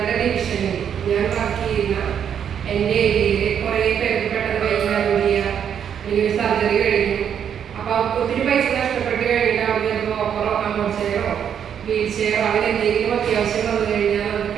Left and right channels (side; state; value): left; quieter; 8.5 dB